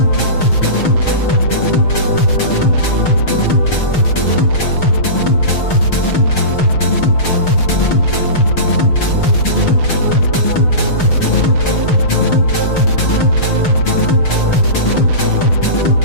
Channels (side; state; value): right; late; 6.5 ms